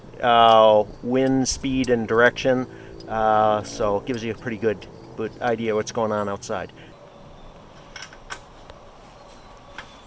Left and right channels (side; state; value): both; identical; correlation 1.00